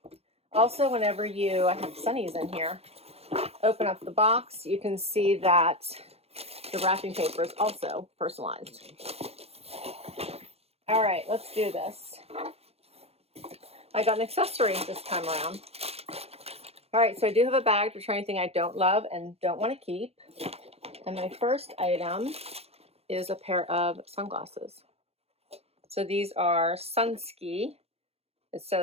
Also, whenever I have Sunnies in here, open up the box, you can see that the wrapping paper is also personalized. All right, let's do this. I got an accessory this time around. All right, so I do have a bag to try anything I don't love and don't want to keep. And my first item is a pair of sunglasses. So these are Sunski. It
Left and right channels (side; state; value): left; late; 0.29 ms